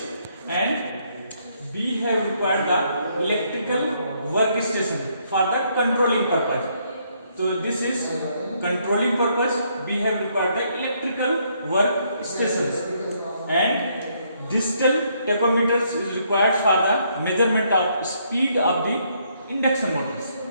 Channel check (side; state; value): both; inverted; correlation -0.71